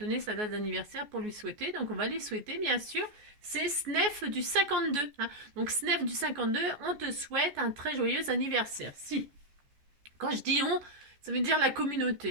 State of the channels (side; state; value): left; late; 14 ms